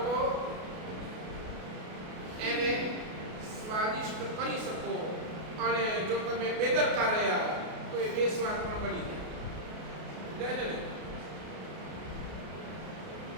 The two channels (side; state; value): left; late; 33 ms